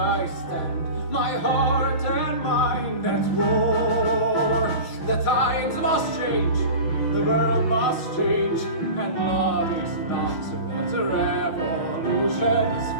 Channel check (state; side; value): late; right; 5.8 ms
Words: end that war. The times must change, the world must change, and love is not what the revolution's